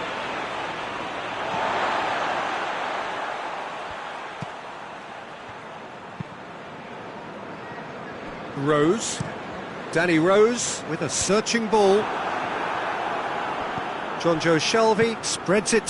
Rose. Danny Rose with a searching ball. Jonjo Shelvey spreads it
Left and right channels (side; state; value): both; identical; correlation 1.00